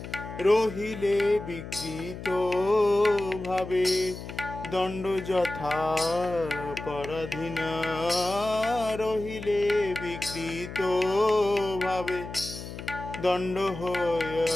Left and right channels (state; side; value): noise; left; hum, 10 dB below the sound